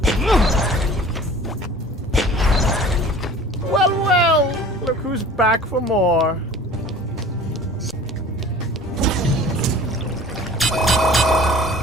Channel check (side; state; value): both; normal; correlation 0.45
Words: Well, well, look who's back for more.